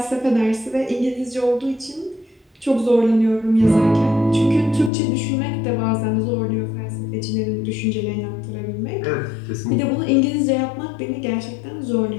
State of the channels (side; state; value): right; drops out; at 4.9 s